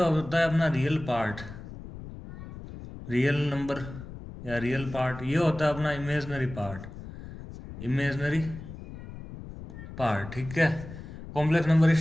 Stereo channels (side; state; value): left; noise; rumble, 13 dB below the sound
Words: होता है अपना रियल पार्ट, रियल नंबर या रियल पार्ट। ये होता है अपना इमेजनरी पार्ट, इमेजनरी पार्ट, ठीक है। कॉम्प्लेक्स नंबर